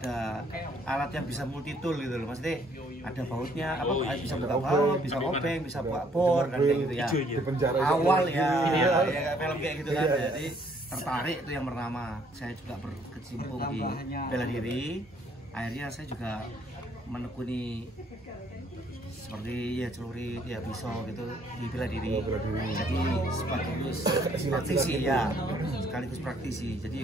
alat yang bisa multi tool gitu loh. Maksudnya ada bautnya, bisa buka baut, bisa obeng, bisa buka bor kan kayak gitu ya. Awal ya kayak film kayak gitu kan. Jadi tertarik itu yang pertama. Saya juga berkecimpung di bela diri. Akhirnya saya juga menekuni seperti ya celurit, ya pisau gitu di bela diri. Jadi sekaligus praktisi ya, sekaligus praktisi.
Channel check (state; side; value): normal; both; correlation 0.64